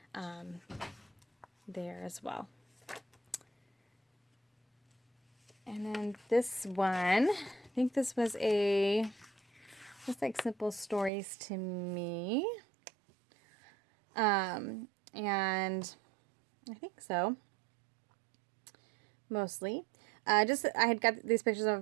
there as well. And then this one, I think this was just like Simple Stories to me. And I think so, mostly. I had got these pictures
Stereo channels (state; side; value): drops out; left; at 11.1 s